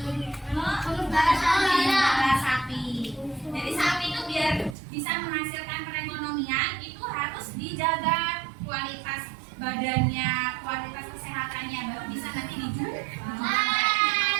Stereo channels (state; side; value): drops out; left; at 4.8 s